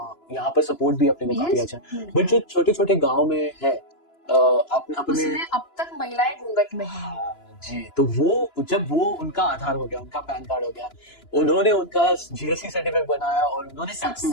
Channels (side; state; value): right; late; 2.9 ms